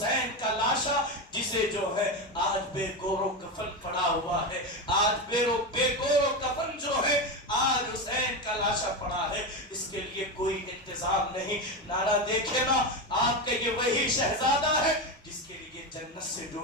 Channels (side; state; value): both; normal; correlation 0.16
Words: کا لاشا جسے جو ہے آج بے گور و کفن پڑا ہوا ہے، آج بے گور و کفن جو ہے آج حسین کا لاشا پڑا ہے، اس کے لیے کوئی انتظام نہیں۔ نانا دیکھے نا، آپ کا یہ وہی شہزادہ ہے جس کے لیے جنت سے